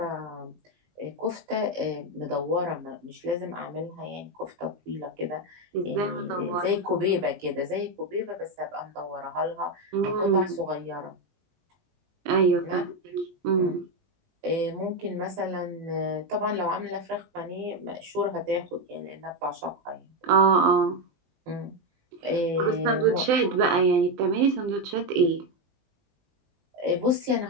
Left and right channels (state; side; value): late; left; 20 ms